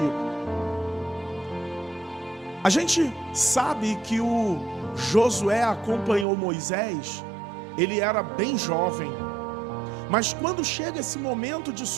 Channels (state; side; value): drops out; left; at 6.2 s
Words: A gente sabe que o Josué acompanhou Moisés, ele era bem jovem. Mas quando chega esse momento de